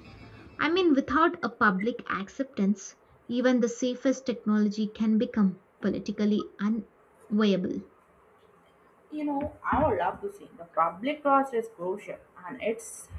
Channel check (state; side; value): identical; both; correlation 1.00